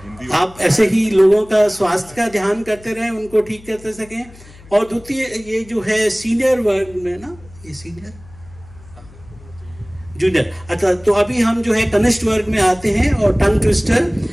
आप ऐसे ही लोगों का स्वास्थ्य का ध्यान करते रहें, उनको ठीक करते सकें। और द्वितीय ये जो है सीनियर वर्ग में ना, ये सीनियर जूनियर। अच्छा, तो अभी हम जो है कनिष्ठ वर्ग में आते हैं और टंग ट्विस्टर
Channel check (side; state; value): left; noise; hum, 22 dB below the sound